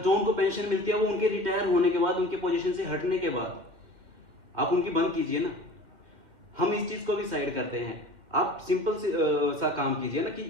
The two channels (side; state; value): left; late; 2.0 ms